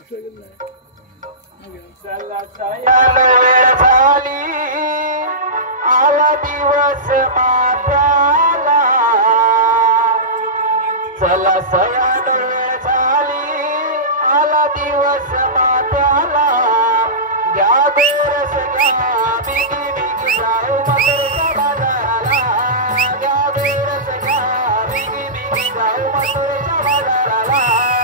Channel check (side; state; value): both; normal; correlation -0.19